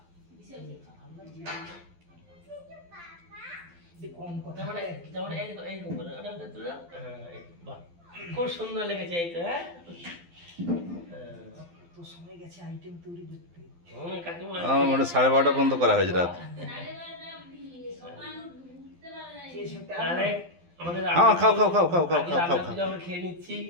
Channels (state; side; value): late; left; 12 ms